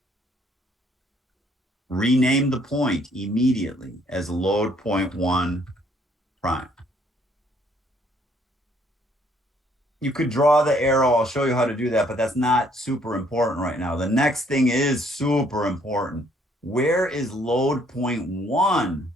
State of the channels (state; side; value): normal; both; correlation 0.65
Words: Rename the point immediately as load point 1 prime. You could draw the arrow. I'll show you how to do that, but that's not super important right now. The next thing is super important. Where is load point 1?